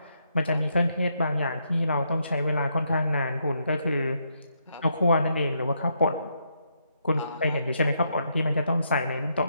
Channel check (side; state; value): both; inverted; correlation -0.77